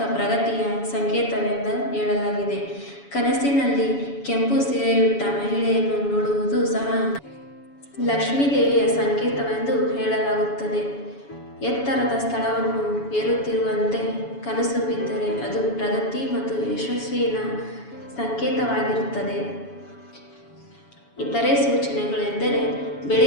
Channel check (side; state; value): right; late; 7.1 ms